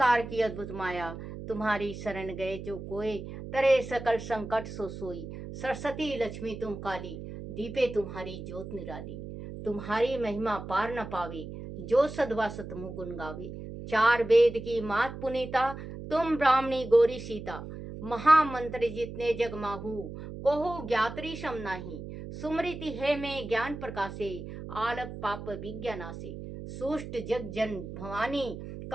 की अद्भुत माया, तुम्हारी शरण गए जो कोय, तरे सकल संकट सो सोई, सरस्वती लक्ष्मी तुम काली, दीपे तुम्हारी ज्योत निराली, तुम्हारी महिमा पार न पावे, जो सदवा सतमुख गुण गावे, चार वेद की मात पुनीता, तुम ब्राह्मणी गौरी सीता, महामंत्र जितने जग माहू, कोहु ज्ञात्री सम नाही, सुमृति है में ज्ञान प्रकाशे, आलप पाप विज्ञानासे, सुष्ट जग जन भवानी,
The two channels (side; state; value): right; noise; hum, 10 dB below the sound